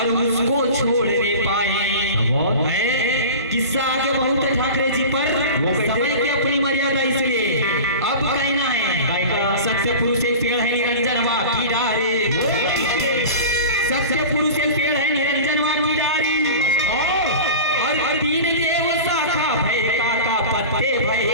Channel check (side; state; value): both; inverted; correlation -0.34